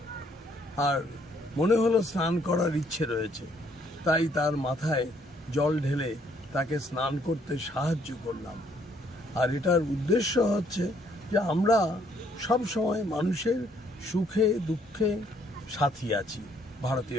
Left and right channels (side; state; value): both; normal; correlation 0.67